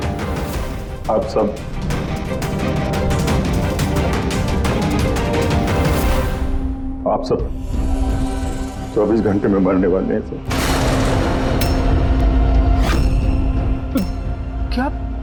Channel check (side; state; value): both; identical; correlation 1.00